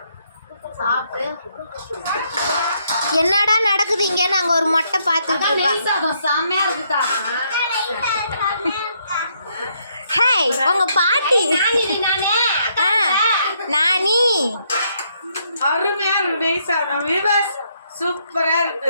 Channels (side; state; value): both; inverted; correlation -0.73